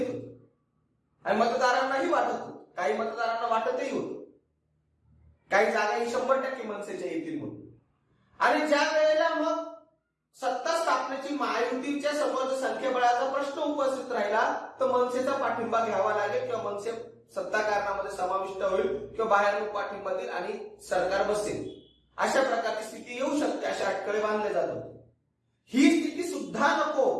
होती आणि मतदारांनाही वाटत होतं, काही मतदारांना वाटतही होतं काही जागाही 100% मनसेच्या येतील म्हणून. आणि ज्या वेळेला मग सत्ता स्थापनेची महायुतीच्या समोर संख्याबळाचा प्रश्न उपस्थित राहिला, तर मनसेचा पाठिंबा घ्यावा लागेल किंवा मनसे सत्ता कारणामध्ये समाविष्ट होईल किंवा बाहेरून पाठिंबा देईल आणि सरकार बसेल, अशा प्रकारची स्थिती येऊ शकते, अशा अटकळे बांधले जातात. ही स्थिती सुद्धा नको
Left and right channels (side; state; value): both; identical; correlation 1.00